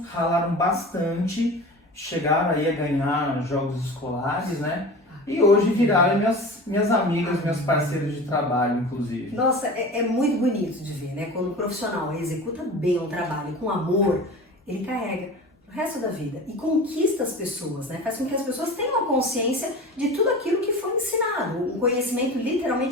ralaram bastante, chegaram aí a ganhar jogos escolares, né? E hoje viraram minhas amigas, meus parceiros de trabalho, inclusive. Nossa, é muito bonito de ver, né? Quando o profissional executa bem um trabalho com amor, ele carrega o resto da vida, e conquista as pessoas, né? Faz com que as pessoas tenham a consciência de tudo aquilo que foi ensinado, um conhecimento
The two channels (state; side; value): normal; both; correlation 0.35